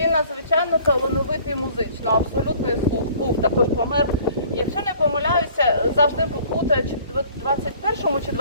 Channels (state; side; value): inverted; both; correlation -0.53